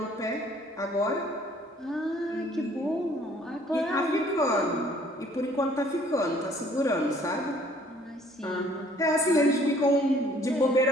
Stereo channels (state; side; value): normal; both; correlation 0.58